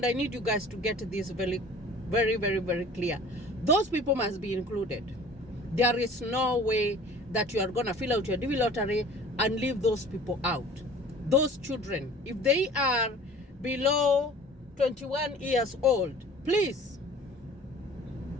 I need you guys to get this very, very, very, very clear, those people must be included. There is no way that you are going to fill out your DV lottery and leave those people out. Those children, if they are below 21 years old, please.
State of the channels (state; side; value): normal; both; correlation 0.46